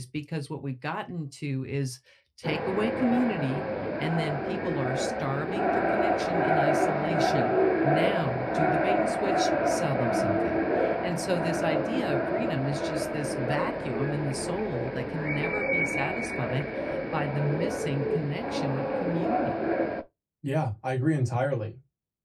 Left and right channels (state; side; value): identical; both; correlation 1.00